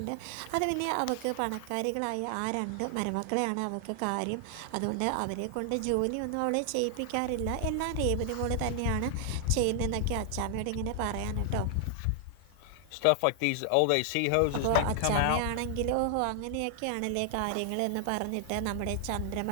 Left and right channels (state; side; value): different; both; correlation 0.00